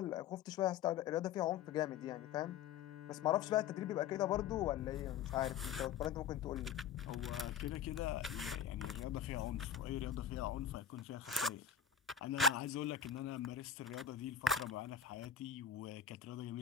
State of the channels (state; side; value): quieter; right; 8.2 dB